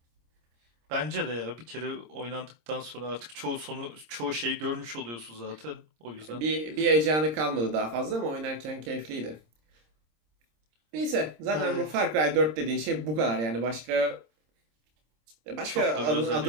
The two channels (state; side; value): late; left; 26 ms